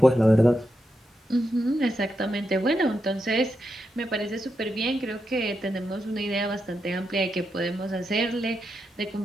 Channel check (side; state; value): both; normal; correlation 0.85